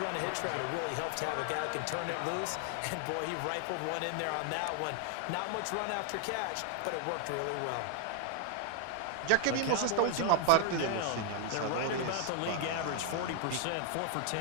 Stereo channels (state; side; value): different; both; correlation 0.00